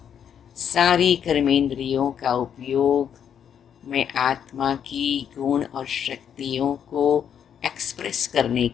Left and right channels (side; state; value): right; quieter; 8.5 dB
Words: सारी कर्मेंद्रियों का उपयोग मैं आत्मा की गुण और शक्तियों को एक्सप्रेस करने